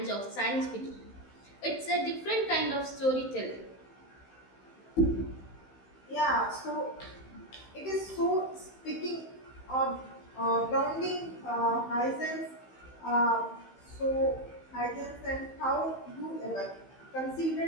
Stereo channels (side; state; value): right; late; 15 ms